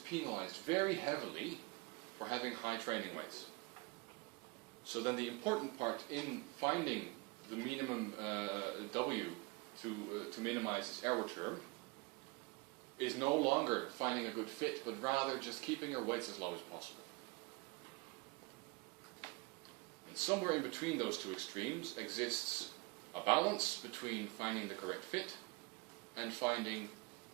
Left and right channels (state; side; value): quieter; left; 26.5 dB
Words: very heavily for having high training weights. So then the important part in finding the minimum W to minimize this error term is no longer finding a good fit, but rather just keeping your weights as low as possible. And somewhere in between those two extremes exists a balance between finding the correct fit and finding